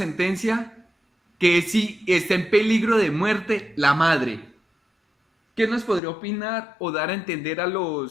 que es si está en peligro de muerte la madre. ¿Qué nos podría opinar o dar a entender a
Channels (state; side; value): drops out; right; at 6.0 s